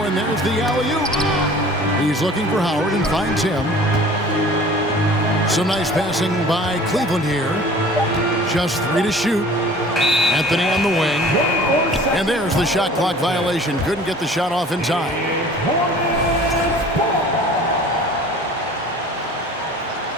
and there's the alley-oop. He's looking for Howard and finds him. Some nice passing by Cleveland here. Just 3 to shoot. Anthony on the wing. And there's the shot clock violation. Couldn't get the shot off in time.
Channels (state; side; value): normal; both; correlation 0.46